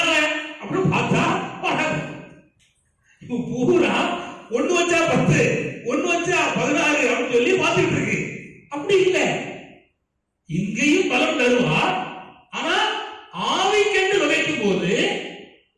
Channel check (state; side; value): identical; both; correlation 1.00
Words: அப்படின்னு பார்த்தா வராது. இப்ப பூரா ஒண்ணு வச்சா 10, ஒண்ணு வச்சா 16 அப்படின்னு சொல்லி பார்த்துட்டு இருக்கு. அப்படி இல்லை, இங்கேயும் பலம் தருவா. ஆனா ஆவிக்கென்று விதைக்கும் போது